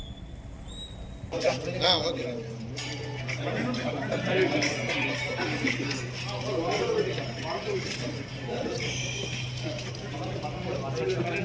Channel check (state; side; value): identical; both; correlation 1.00